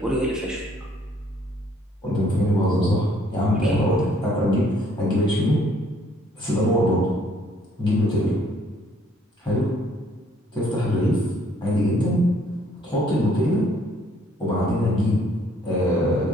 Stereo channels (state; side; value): normal; both; correlation 0.63